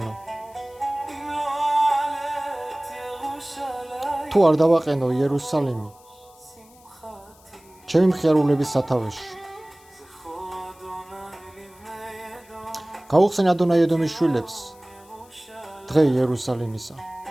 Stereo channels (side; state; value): left; noise; hiss, 27 dB below the sound